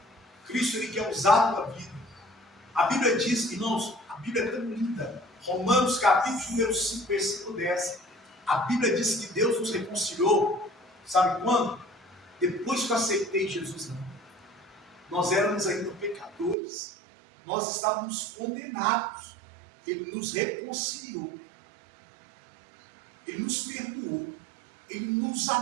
Cristo, Ele quer usar a tua vida. A Bíblia diz, irmãos, a Bíblia é tão linda. Romanos capítulo número 5, versículo 10. A Bíblia diz que Deus nos reconciliou. Sabe quando? Depois que eu aceitei Jesus. Não. Nós éramos ainda pecadores. Nós estávamos condenados. Ele nos reconciliou. Ele nos perdoou. Ele nos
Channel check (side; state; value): left; drops out; at 16.6 s